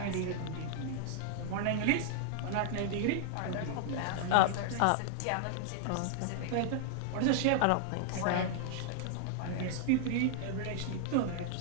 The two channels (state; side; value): different; both; correlation -0.01